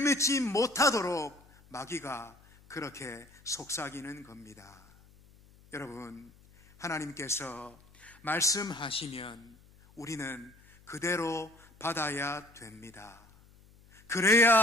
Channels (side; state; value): left; noise; hum, 26 dB below the sound